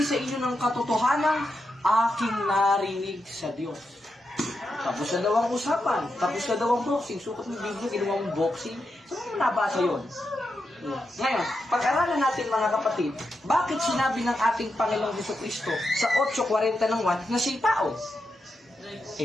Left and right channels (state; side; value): normal; both; correlation 0.86